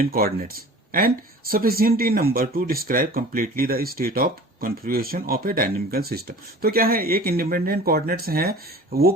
coordinates and sufficient in number to describe completely the state of configuration of a dynamical system. तो क्या है, एक इंडिपेंडेंट कोऑर्डिनेट्स हैं, वो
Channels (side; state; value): both; normal; correlation 0.42